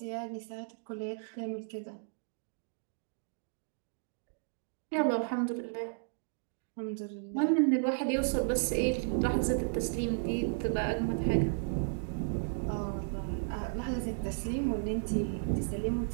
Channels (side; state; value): left; silent; digital silence